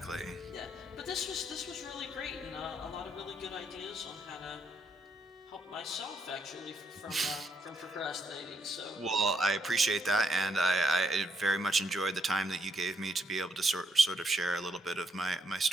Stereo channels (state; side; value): normal; both; correlation 0.75